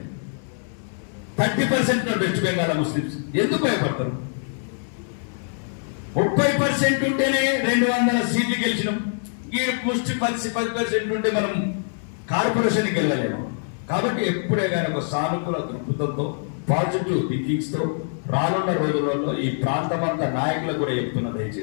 30% వెస్ట్ బెంగాల్ ముస్లిమ్స్. ఎందుకు భయపడతారు? 30% ఉంటేనే 200 సీట్లు గెలిచినాం. ఈ ముష్టి 10% ఉంటే మనం కార్పొరేషన్కి వెళ్ళలేము. కాబట్టి ఎప్పుడే కానీ ఒక సానుకూల దృక్పథంతో, పాజిటివ్ థింకింగ్స్ తో రానున్న రోజులలో ఈ ప్రాంతమంతా నాయకులకు కూడా చెప్తున్నా,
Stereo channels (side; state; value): right; silent; digital silence